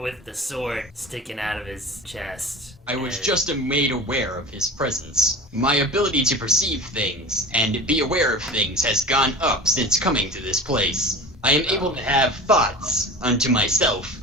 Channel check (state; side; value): normal; both; correlation 0.35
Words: the sword sticking out of his chest. I was and- just made aware of his presence. My ability to perceive things and be aware of things has gone up since coming to this place. I am able to have thoughts unto myself.